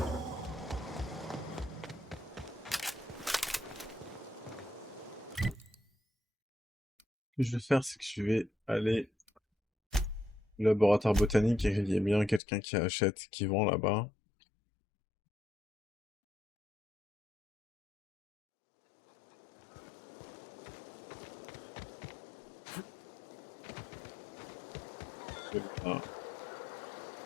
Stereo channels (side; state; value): right; drops out; at 12.4 s